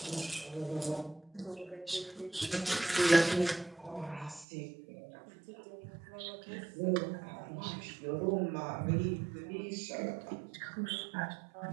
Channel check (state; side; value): drops out; left; at 4.5 s